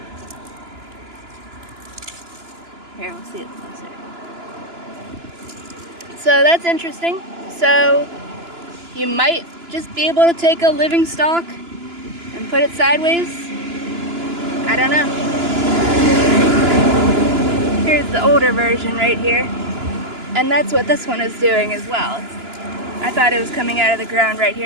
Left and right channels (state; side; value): late; left; 2.9 ms